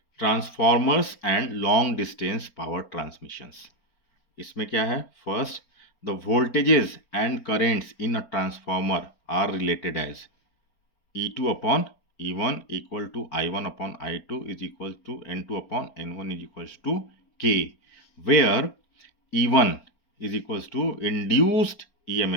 transformers and long distance power transmissions. इसमें क्या है? First, the voltages and currents in a transformer are related as E2 upon E1 equal to I1 upon I2 is equal to N2 upon N1 is equals to K, where E1 is equals to induced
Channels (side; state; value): right; late; 4.4 ms